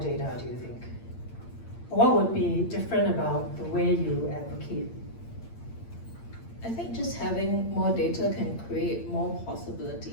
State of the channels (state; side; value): late; right; 8.7 ms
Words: do you think? What would be different about the way you advocate? I think just having more data can create more